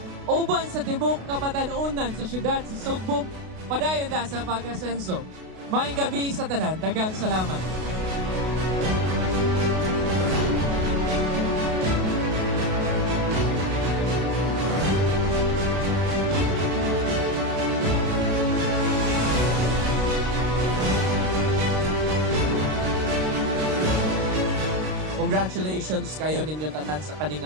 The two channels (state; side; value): late; left; 32 ms